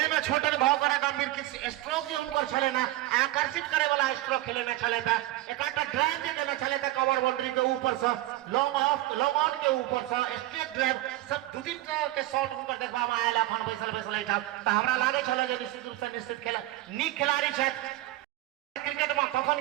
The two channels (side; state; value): left; quieter; 16.7 dB